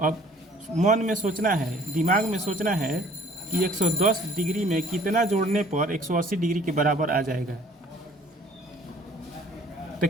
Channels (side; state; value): both; normal; correlation 0.55